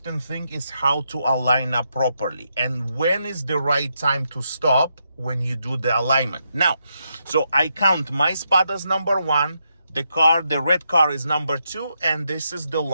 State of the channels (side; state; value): both; inverted; correlation -0.81